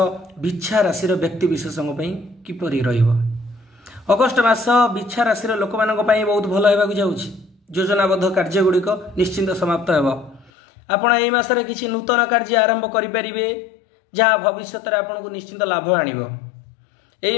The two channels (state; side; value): drops out; right; at 10.5 s